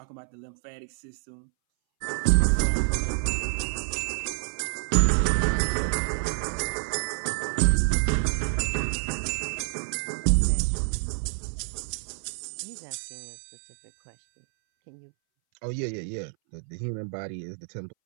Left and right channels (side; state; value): left; silent; 60 dB below the other